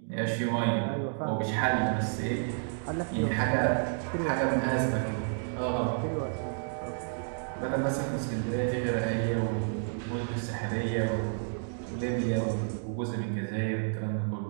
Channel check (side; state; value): left; silent; digital silence